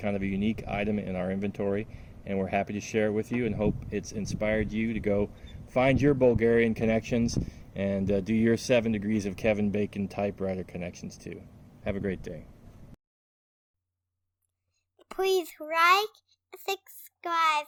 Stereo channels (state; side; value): identical; both; correlation 1.00